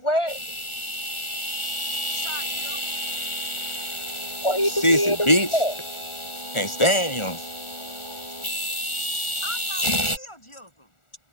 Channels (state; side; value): late; right; 1.4 ms